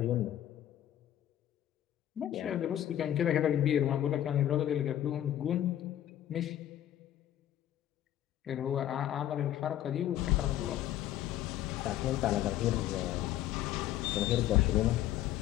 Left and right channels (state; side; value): quieter; right; 12.1 dB